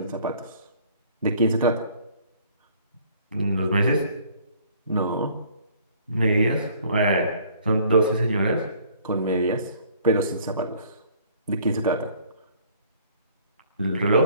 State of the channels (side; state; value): both; inverted; correlation -0.57